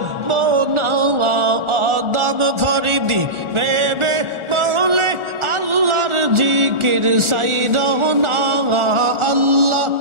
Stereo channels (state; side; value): late; left; 1.4 ms